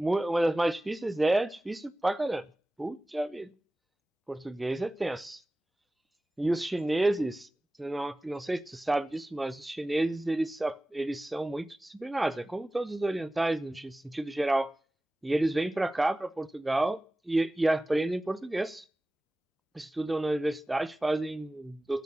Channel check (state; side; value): normal; both; correlation 0.97